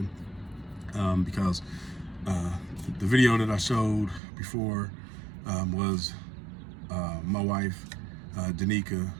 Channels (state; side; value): drops out; left; at 4.2 s